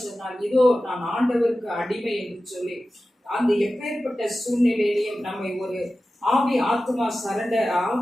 சொன்னால், இதோ நான் ஆண்டவருக்கு அடிமை என்று சொல்லி, அந்த எப்பேற்பட்ட சூழ்நிலையிலையும் நம்மை ஒரு ஆவி ஆத்மா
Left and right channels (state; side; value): normal; both; correlation 0.94